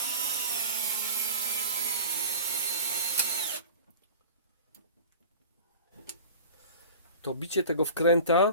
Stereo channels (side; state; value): both; inverted; correlation -0.38